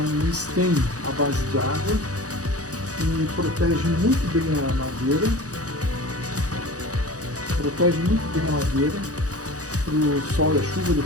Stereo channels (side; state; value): left; late; 0.67 ms